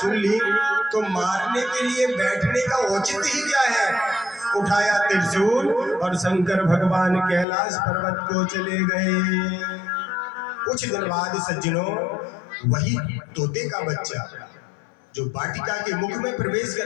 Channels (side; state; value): right; drops out; at 7.5 s